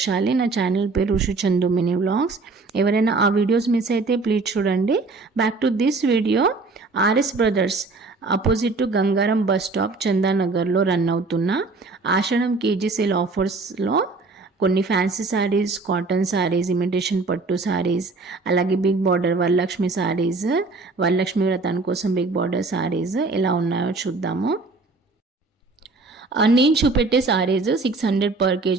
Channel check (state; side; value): quieter; left; 3.7 dB